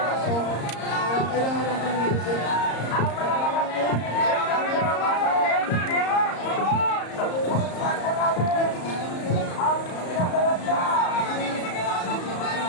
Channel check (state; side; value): late; right; 34 ms